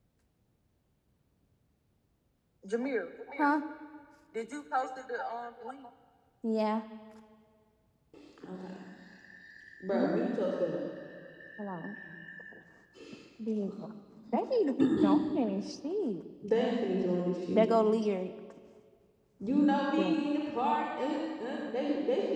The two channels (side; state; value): both; identical; correlation 1.00